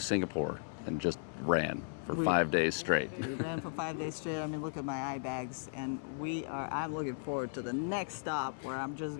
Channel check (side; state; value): right; silent; 54 dB below the other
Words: Singapore and just ran for 5 days straight. We ran for 5 days straight. I mean, look at my eye bags. And I'm looking forward to the next stop where I'm just